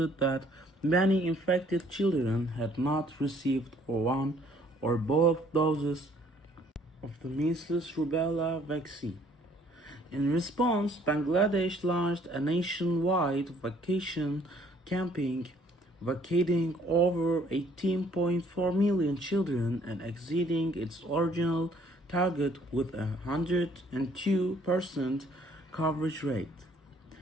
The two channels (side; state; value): both; normal; correlation 0.61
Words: that many infected children had not received one or both doses of the measles rubella vaccine. In response, Bangladesh launched a nationwide vacation campaign, vaccinating over 18.4 million children and exceeding its original target with a 102% coverage rate.